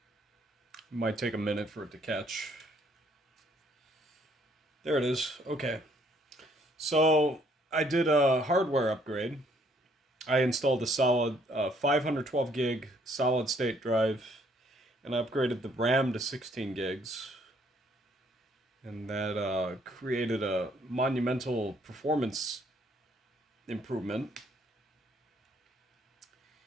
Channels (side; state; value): both; normal; correlation 0.65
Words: It might take a minute for it to catch. There it is. Okay. So I did a hardware upgrade. I installed a solid 512 gig solid state drive, and I upgraded the RAM to 16 gigs. And that created a monumental performance improvement.